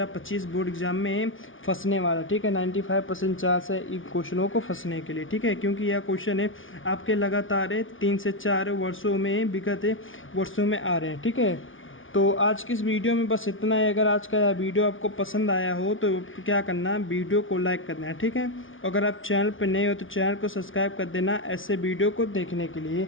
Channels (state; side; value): late; right; 0.57 ms